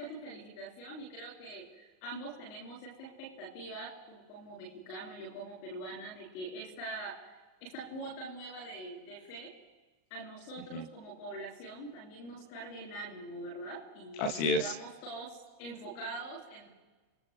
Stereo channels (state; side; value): late; right; 38 ms